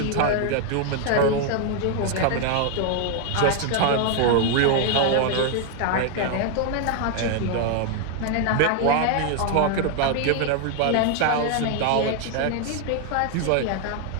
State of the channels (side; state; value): both; different; correlation 0.00